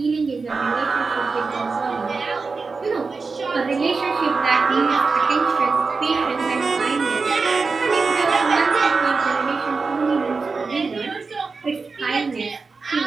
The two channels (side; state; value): left; quieter; 4.4 dB